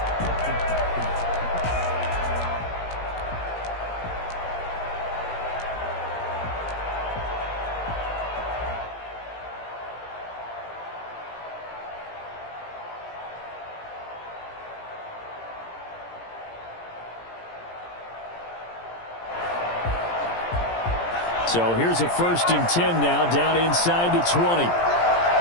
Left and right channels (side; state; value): right; late; 17 ms